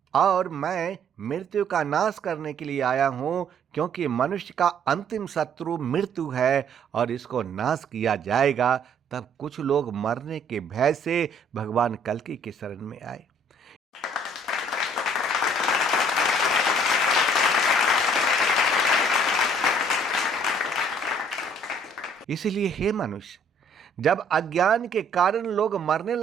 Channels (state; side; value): normal; both; correlation 0.60